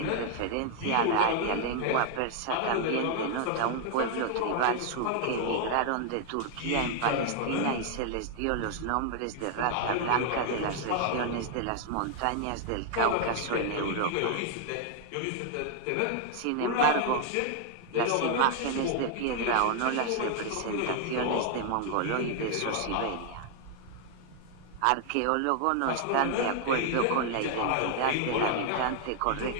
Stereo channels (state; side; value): different; both; correlation 0.00